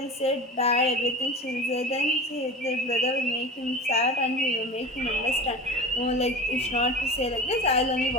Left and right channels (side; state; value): both; normal; correlation 0.32